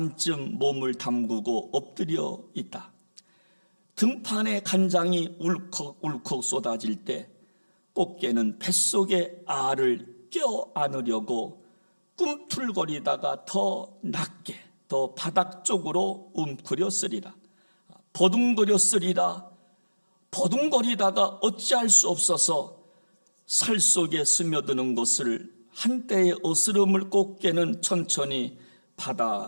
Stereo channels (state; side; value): inverted; both; correlation -1.00